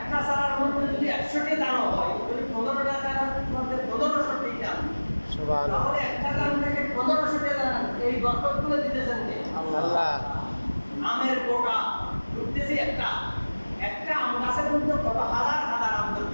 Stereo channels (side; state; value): both; inverted; correlation -1.00